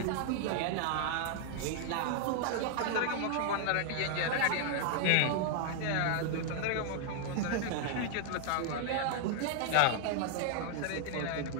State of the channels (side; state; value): both; different; correlation -0.01